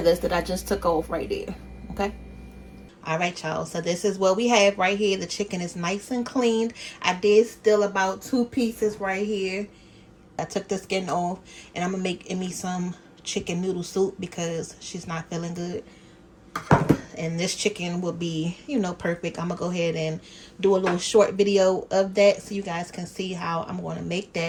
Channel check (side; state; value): both; identical; correlation 1.00